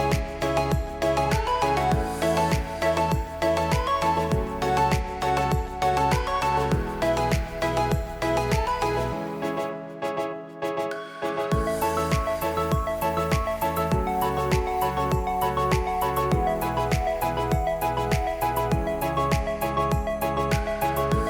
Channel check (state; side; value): identical; both; correlation 1.00